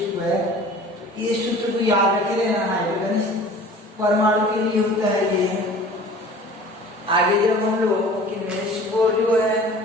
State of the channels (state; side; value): normal; both; correlation 0.44